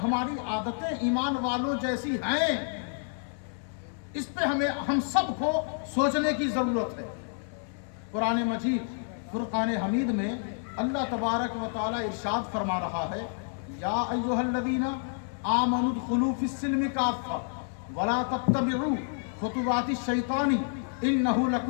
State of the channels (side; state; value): right; silent; 57 dB below the other